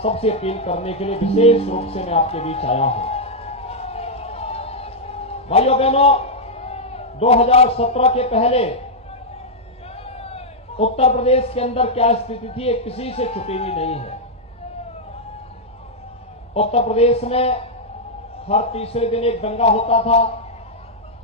सबसे अपील करने के लिए विशेष रूप से मैं आपके बीच आया हूं। भाइयों बहनों, 2017 के पहले उत्तर प्रदेश के अंदर क्या स्थिति थी, ये किसी से छुपी हुई नहीं है। उत्तर प्रदेश में हर तीसरे दिन एक दंगा होता था।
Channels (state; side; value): normal; both; correlation -0.05